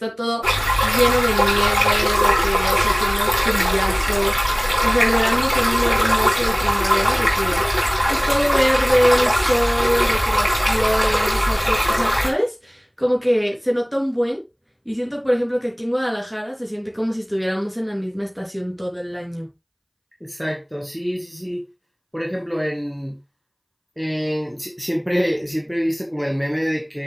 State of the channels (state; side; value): identical; both; correlation 1.00